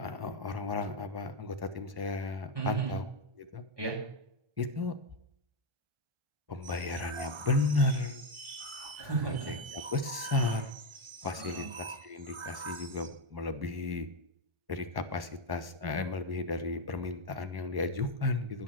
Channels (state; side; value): late; left; 1.1 ms